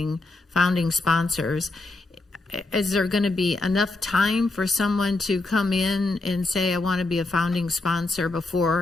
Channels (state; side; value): quieter; right; 3.1 dB